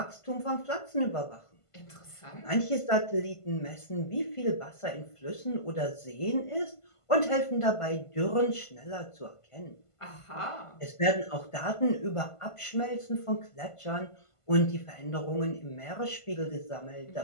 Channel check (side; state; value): right; late; 1.5 ms